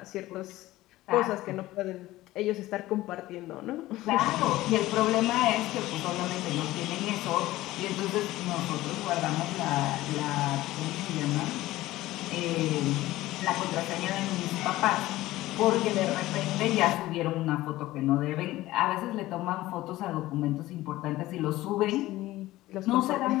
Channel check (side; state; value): right; quieter; 16.8 dB